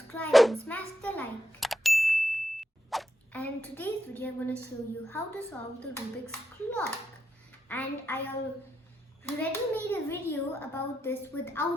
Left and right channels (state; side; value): normal; both; correlation 0.84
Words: and smash the like. And in today's video I'm going to show you how to solve the Rubik's clock. And I already made a video about this